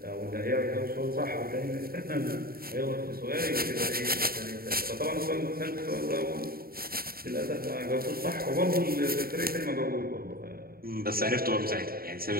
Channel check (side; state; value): left; late; 0.43 ms